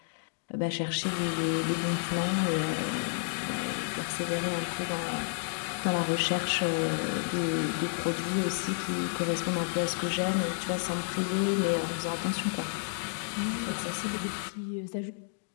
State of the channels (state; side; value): silent; right; digital silence